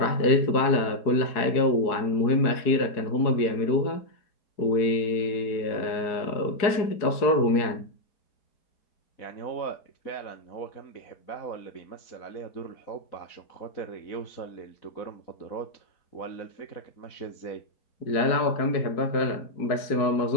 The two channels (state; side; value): late; right; 4.7 ms